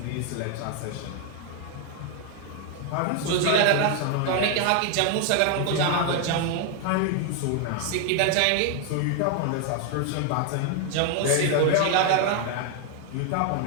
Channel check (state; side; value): different; both; correlation 0.00